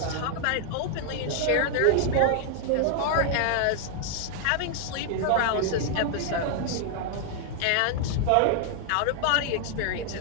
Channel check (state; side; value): different; both; correlation 0.00